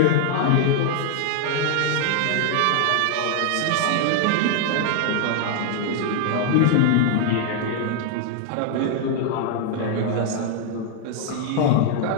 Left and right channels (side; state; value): both; different; correlation 0.00